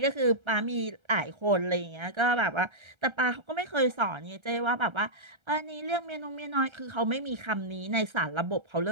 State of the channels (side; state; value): left; late; 1.3 ms